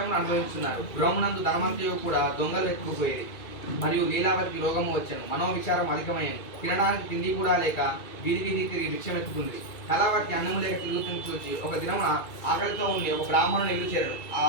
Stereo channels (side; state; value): right; late; 2.3 ms